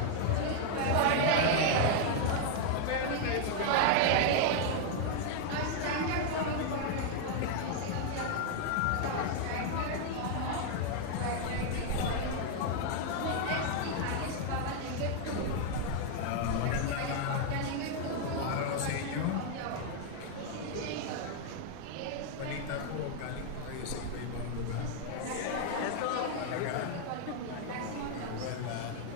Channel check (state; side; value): different; both; correlation 0.00